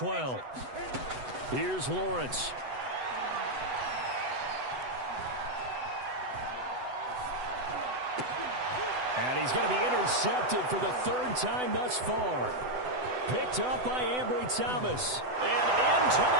Here's Lawrence. And he's going to be intercepted for the third time thus far. Picked up by Ambry Thomas. And into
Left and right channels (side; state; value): left; late; 8.0 ms